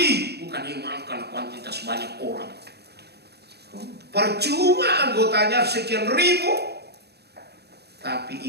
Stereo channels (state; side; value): late; left; 0.48 ms